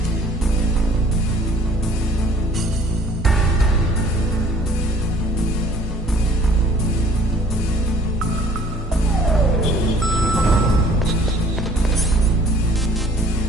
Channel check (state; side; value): normal; both; correlation 0.54